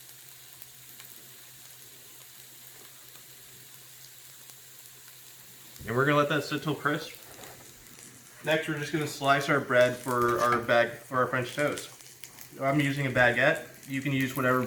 And we're gonna let that sit till crisp. Next, we're just gonna slice our bread for our French toast. I'm using a baguette. You can use whatever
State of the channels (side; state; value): both; identical; correlation 1.00